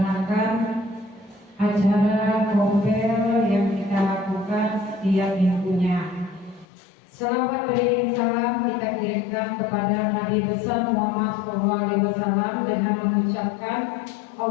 acara kompel yang kita lakukan setiap minggunya. Salawat beriring salam kita kirimkan kepada Nabi besar Muhammad SAW dengan mengucapkan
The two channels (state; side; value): drops out; right; at 6.7 s